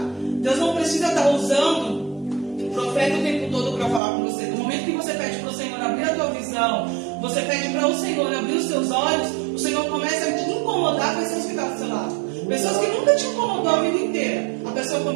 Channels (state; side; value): drops out; left; at 4.0 s